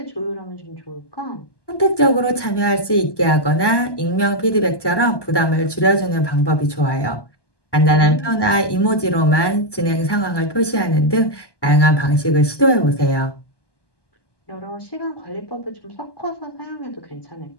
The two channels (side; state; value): right; late; 1.2 ms